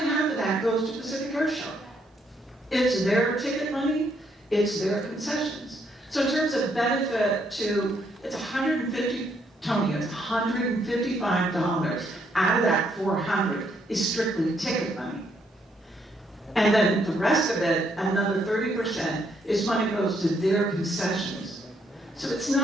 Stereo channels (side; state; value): both; normal; correlation 0.73